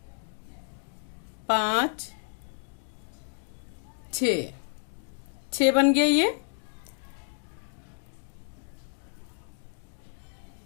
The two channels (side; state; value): right; silent; digital silence